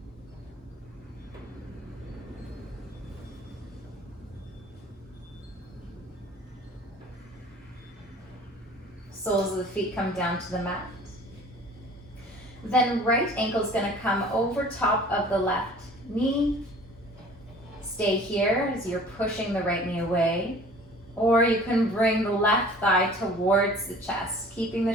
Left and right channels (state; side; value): normal; both; correlation 0.48